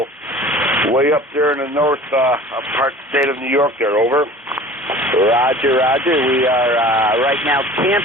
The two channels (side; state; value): both; normal; correlation 0.43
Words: Way up there in the north part of the state of New York there, over. Roger, roger. We are right now